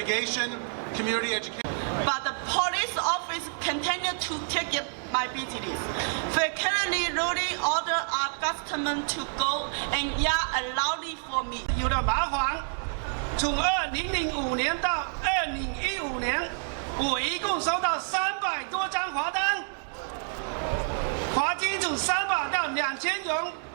community education. But the police office continue to take my business. They currently really order our customer to go and yell loudly for me. 有点麻烦。从2005年到2015年，我一共收到300多张罚单，罚金从300到2000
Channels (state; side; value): silent; left; 59 dB below the other